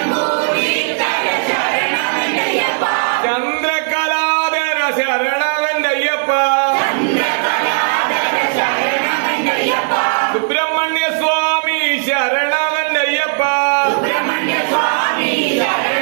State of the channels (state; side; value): silent; left; digital silence